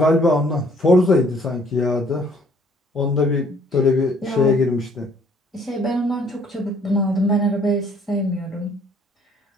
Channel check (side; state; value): both; normal; correlation 0.61